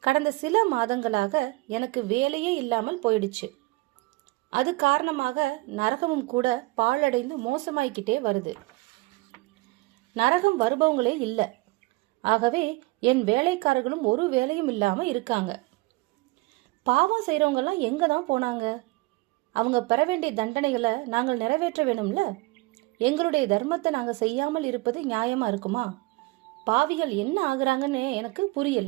கடந்த சில மாதங்களாக எனக்கு வேலையே இல்லாமல் போயிடுச்சு. அது காரணமாக நரகமும் கூட பாழடைந்து மோசமாய்கிட்டே வருது. நரகம் வருபவங்களே இல்லை. ஆகவே என் வேலைக்காரர்களும் ஒரு வேலையும் இல்லாம இருக்காங்க. பாவம் செய்யறவங்க எல்லாம் எங்க தான் போனாங்க? அவங்க பெற வேண்டிய தண்டனைகளை நாங்கள் நிறைவேற்ற வேணும்ல. எங்களுடைய தர்மத்தை நாங்க செய்யாமல் இருப்பது நியாயமா இருக்குமா? பாவிகள் என்ன ஆகுறாங்கன்னு எனக்கு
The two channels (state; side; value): quieter; left; 23.1 dB